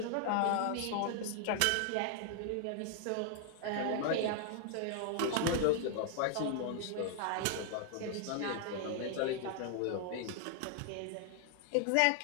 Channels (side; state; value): both; different; correlation 0.00